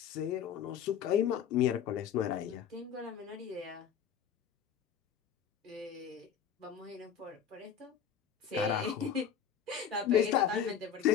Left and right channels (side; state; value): right; quieter; 8.3 dB